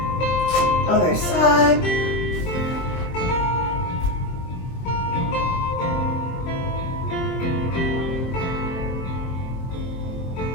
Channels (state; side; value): late; right; 23 ms